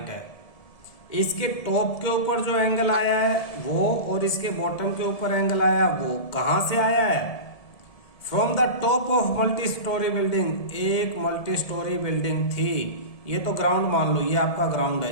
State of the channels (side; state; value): right; late; 1.7 ms